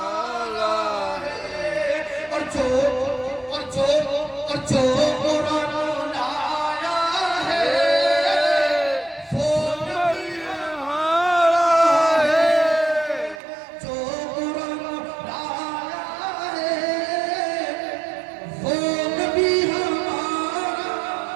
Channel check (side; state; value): left; drops out; at 13.4 s